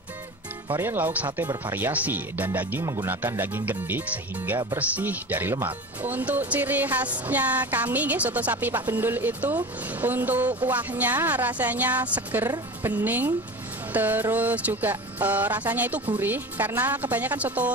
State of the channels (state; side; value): normal; both; correlation 0.32